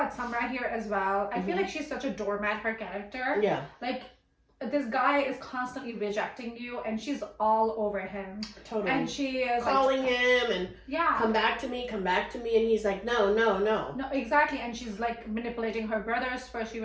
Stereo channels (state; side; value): identical; both; correlation 1.00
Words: Samra here as well? I feel like she's such a doormat, her character. Yeah. Like, this guy is constantly rejecting you and she's all over him. Totally. And she is calling him and yeah, come back to me. And he's like, no. No, exactly. And she's like manipulating her brothers. First she